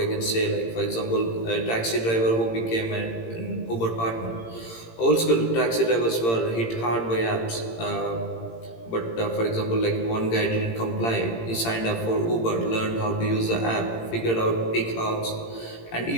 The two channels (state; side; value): late; right; 18 ms